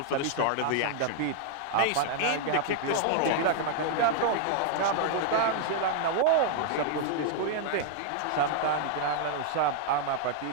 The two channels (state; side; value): different; both; correlation -0.01